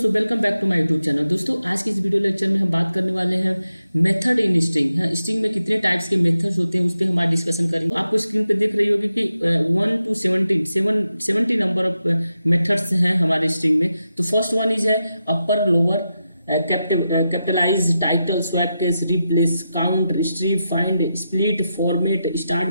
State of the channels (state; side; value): inverted; both; correlation -0.88